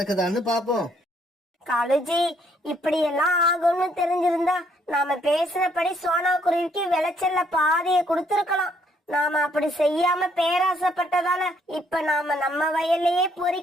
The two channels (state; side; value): normal; both; correlation 0.68